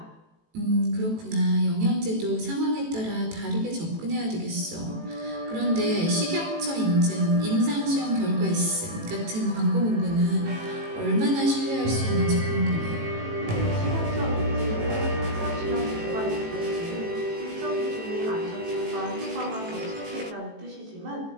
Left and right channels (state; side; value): late; left; 18 ms